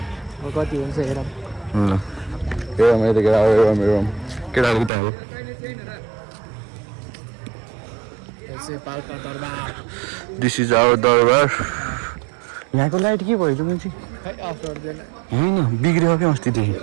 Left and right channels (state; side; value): drops out; left; at 4.9 s